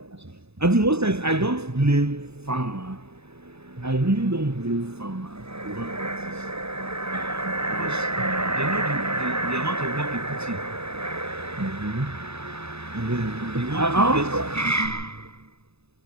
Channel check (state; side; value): late; left; 0.79 ms